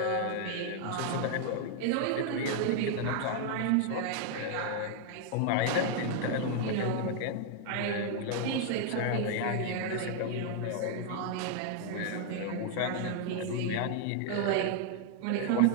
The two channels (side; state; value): both; different; correlation 0.00